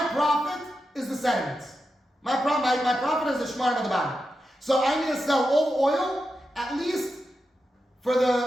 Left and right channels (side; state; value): both; normal; correlation 0.89